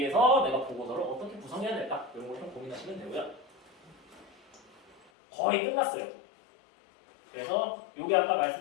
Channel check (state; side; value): drops out; right; at 5.1 s